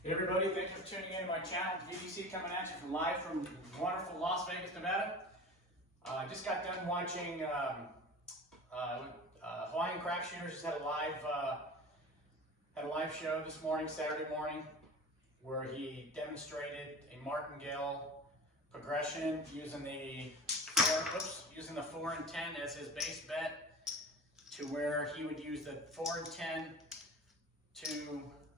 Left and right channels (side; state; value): both; normal; correlation 0.36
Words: Hey everybody, thank you for tuning in to my channel. VBC coming at you live from wonderful Las Vegas, Nevada. I just got done watching Hawaiian Craps Shooters. Just had a live show this morning, Saturday morning, where he demonstrated a Martingale progression using the 4 and 10 as his base bet, to where he would use the 4 and 10 to